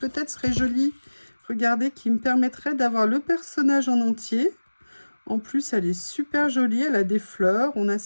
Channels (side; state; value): both; inverted; correlation -1.00